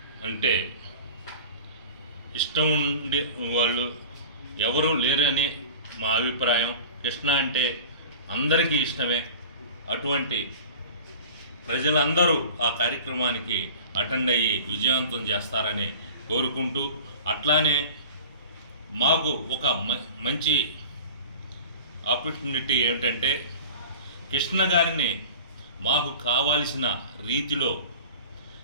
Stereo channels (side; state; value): both; inverted; correlation -0.39